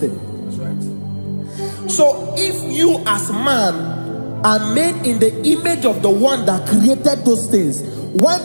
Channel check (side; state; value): both; inverted; correlation -1.00